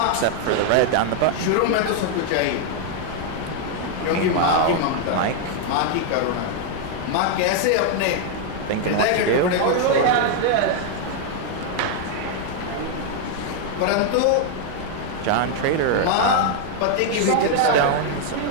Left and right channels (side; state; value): both; different; correlation 0.00